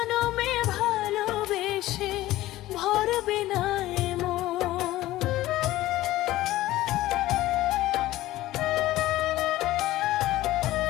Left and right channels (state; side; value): quieter; right; 16.1 dB